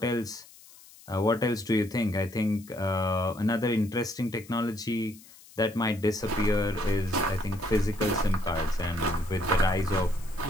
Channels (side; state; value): left; noise; hiss, 22 dB below the sound